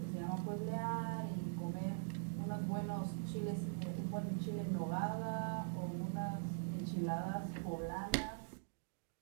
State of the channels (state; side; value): silent; left; digital silence